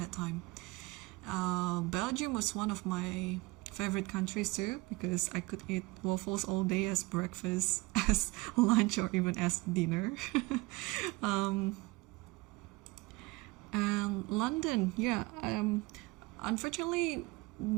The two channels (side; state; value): left; quieter; 23.1 dB